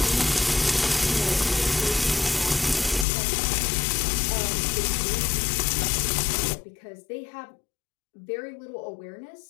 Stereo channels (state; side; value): drops out; right; at 3.1 s